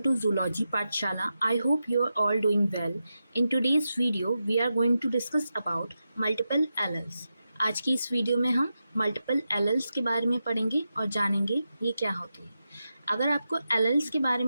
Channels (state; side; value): inverted; both; correlation -0.89